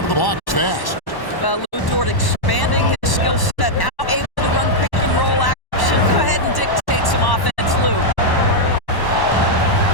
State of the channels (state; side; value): late; right; 1.1 ms